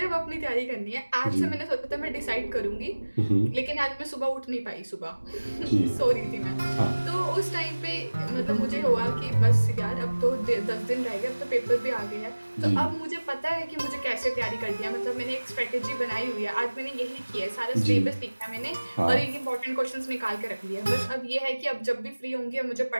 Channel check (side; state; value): both; inverted; correlation -1.00